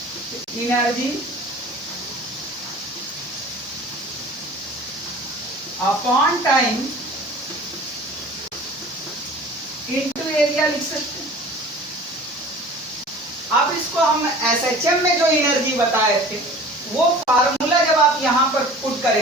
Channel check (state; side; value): normal; both; correlation 0.43